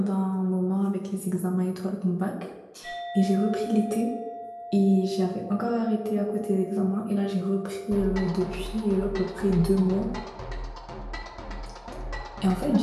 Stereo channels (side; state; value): both; identical; correlation 1.00